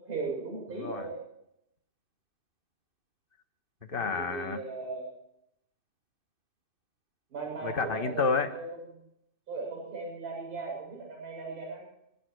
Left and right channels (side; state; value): left; late; 2.6 ms